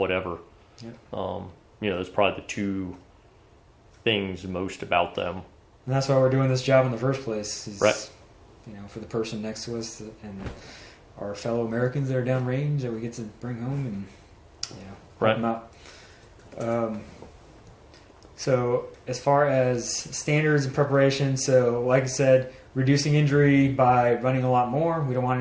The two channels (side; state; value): both; identical; correlation 1.00